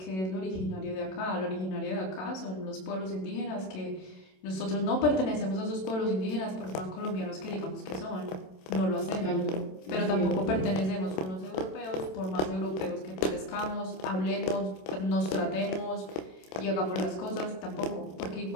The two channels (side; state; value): right; late; 27 ms